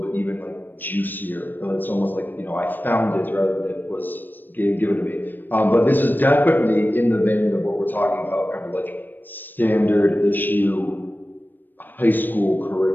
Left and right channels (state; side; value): late; right; 0.092 ms